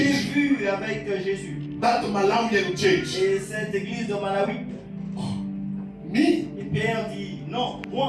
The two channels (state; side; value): identical; both; correlation 1.00